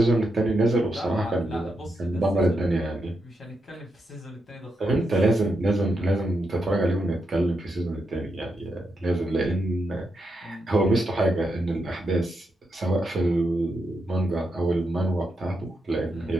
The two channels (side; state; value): both; normal; correlation 0.84